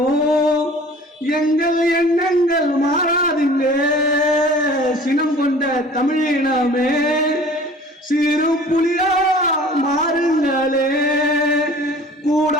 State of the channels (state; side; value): normal; both; correlation 0.47